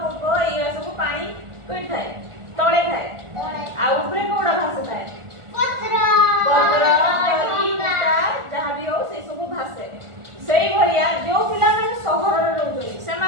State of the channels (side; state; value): left; late; 1.4 ms